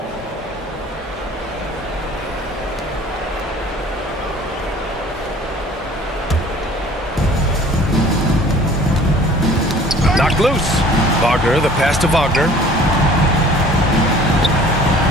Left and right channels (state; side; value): normal; both; correlation 0.50